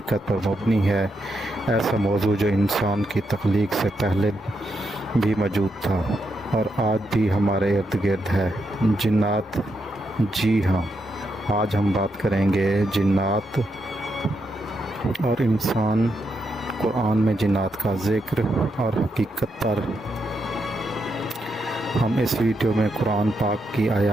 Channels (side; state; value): both; normal; correlation 0.82